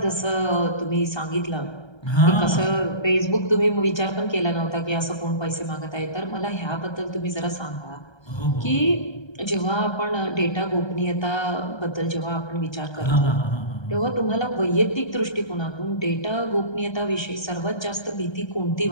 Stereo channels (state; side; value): late; right; 1.3 ms